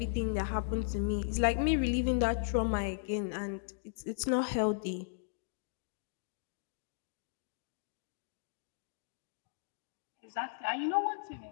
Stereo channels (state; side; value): silent; right; digital silence